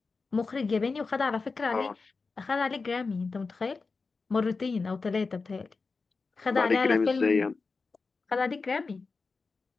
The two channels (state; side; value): quieter; right; 4.3 dB